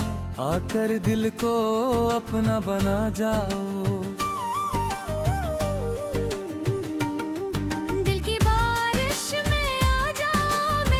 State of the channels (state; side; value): identical; both; correlation 1.00